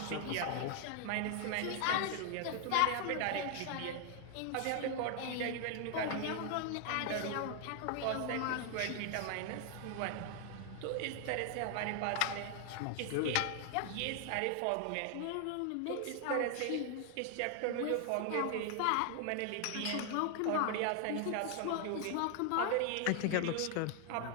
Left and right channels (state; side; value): different; both; correlation 0.00